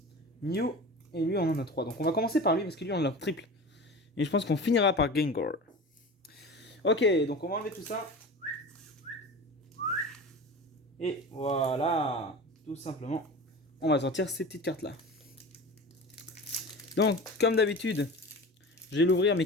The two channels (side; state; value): both; normal; correlation 0.33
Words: Mew. Et lui, on en a 3. Donc on va commencer par lui parce que lui, on l'a triple. Et je pense qu'on finira par Gengar. Ok, donc on va enlever tout ça. Et voilà. Tout simplement, on va sortir ces petites cartes là. Donc, comme d'habitude, je vais l'ouvrir mais